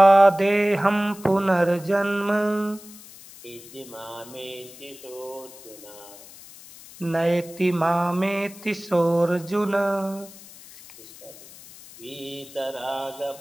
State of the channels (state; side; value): noise; left; hiss, 19 dB below the sound